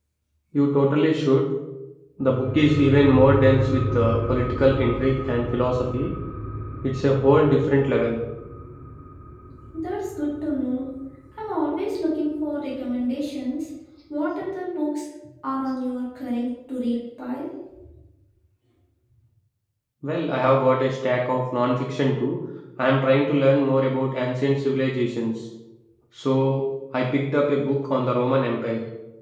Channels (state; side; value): identical; both; correlation 1.00